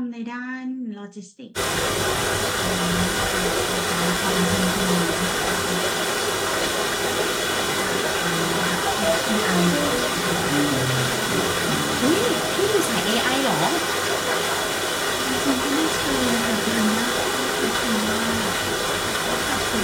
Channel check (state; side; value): identical; both; correlation 1.00